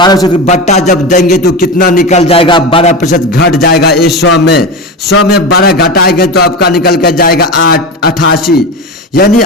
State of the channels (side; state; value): both; normal; correlation 0.23